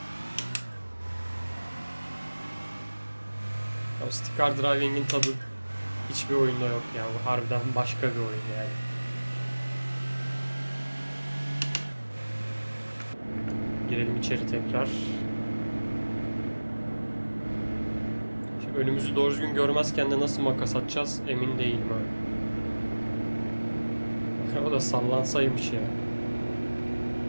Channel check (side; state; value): both; inverted; correlation -1.00